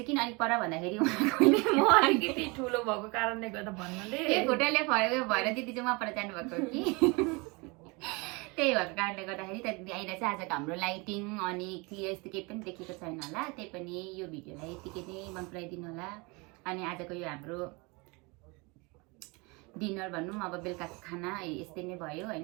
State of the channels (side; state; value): left; quieter; 27.7 dB